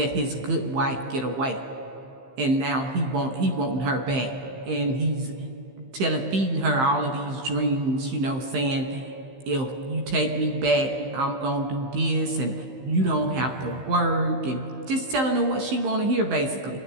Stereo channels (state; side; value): late; left; 15 ms